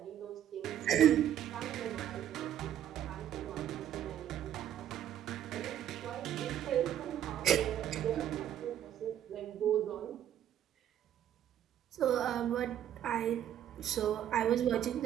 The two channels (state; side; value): quieter; left; 10.8 dB